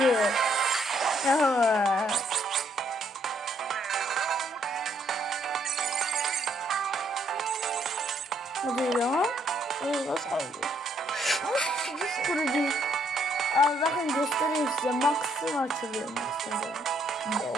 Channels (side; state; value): both; normal; correlation 0.70